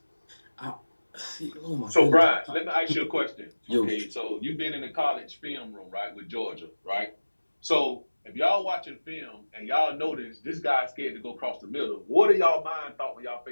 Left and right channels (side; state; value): both; inverted; correlation -1.00